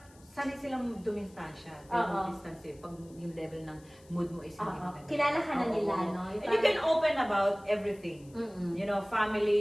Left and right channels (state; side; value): noise; left; hiss, 27 dB below the sound